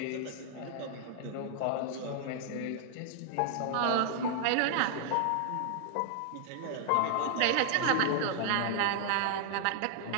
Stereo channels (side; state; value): both; different; correlation 0.00